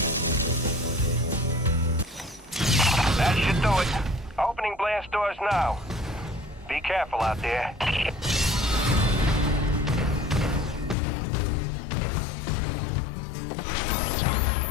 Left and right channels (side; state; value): right; drops out; at 11.0 s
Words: That should do it. Opening blast doors now. Be careful out there.